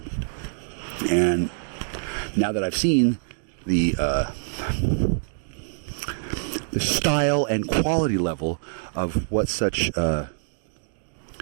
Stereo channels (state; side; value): silent; left; digital silence